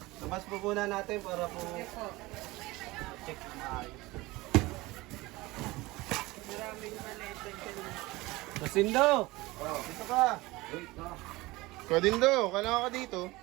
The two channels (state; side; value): quieter; left; 20.8 dB